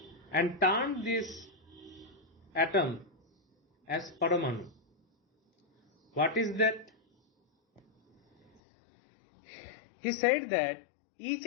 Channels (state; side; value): drops out; right; at 8.6 s